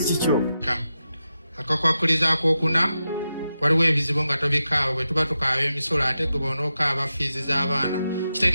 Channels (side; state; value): both; inverted; correlation -0.89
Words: kikyo. Akakwakuliza akokuna waliwo ebizibu nga tobikaaba bwe tuba tukaaba emisolo ate gwe bonookaaba fiizi z'abaana